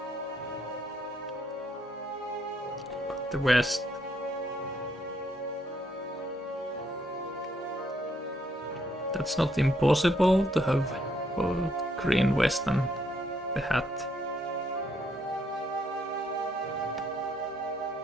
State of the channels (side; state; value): both; normal; correlation 0.72